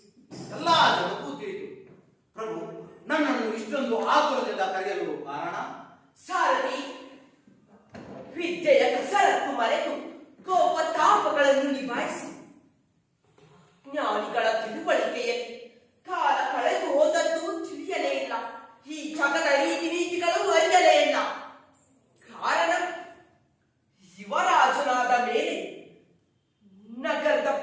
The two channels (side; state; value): both; identical; correlation 1.00